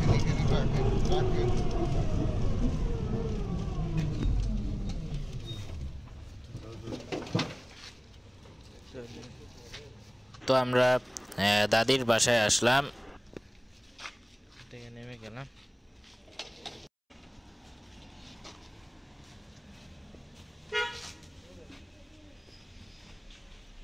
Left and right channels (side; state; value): both; identical; correlation 1.00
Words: তো আমরা দাদির বাসায় আসলাম, নেমে গেলাম।